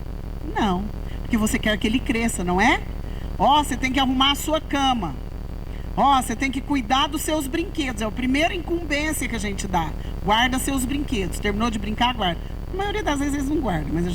Não, porque você quer que ele cresça, não é? Você tem que arrumar a sua cama. Você tem que cuidar dos seus brinquedos. É a primeira incumbência que a gente dá. Guarda seus brinquedos. Terminou de brincar, guarda. A maioria das vezes eles não guardam, mas a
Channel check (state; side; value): identical; both; correlation 1.00